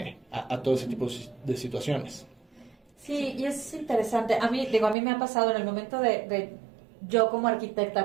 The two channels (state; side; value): drops out; left; at 5.0 s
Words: a todo ese tipo de situaciones. Sí, y es interesante. A mí me ha pasado en el momento de yo como